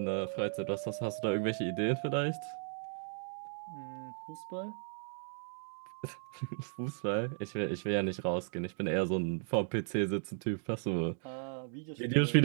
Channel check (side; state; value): left; silent; digital silence